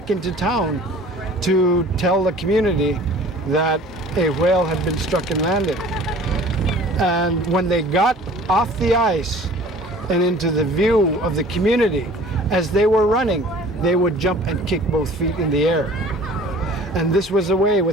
into town to tell the community that a whale had been struck and landed. And when they got off the ice and into the view of the community, as they were running, they would jump and kick both feet in the air. And this was a way,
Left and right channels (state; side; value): normal; both; correlation 0.47